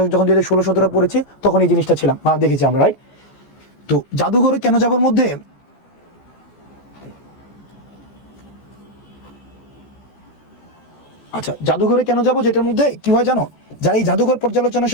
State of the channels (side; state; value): right; late; 14 ms